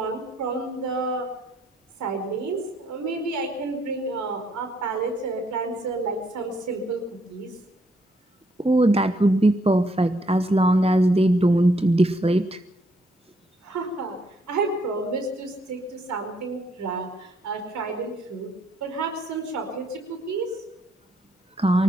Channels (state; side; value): normal; both; correlation 0.71